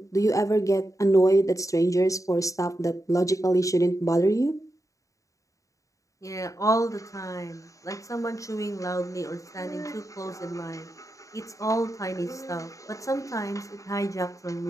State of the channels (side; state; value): right; late; 0.16 ms